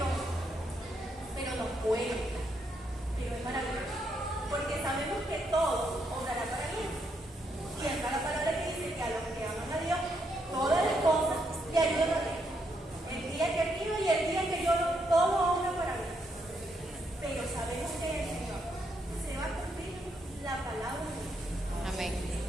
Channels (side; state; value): both; normal; correlation 0.77